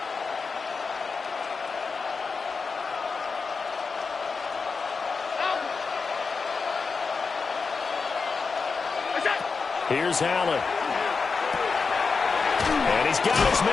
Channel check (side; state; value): right; quieter; 4.8 dB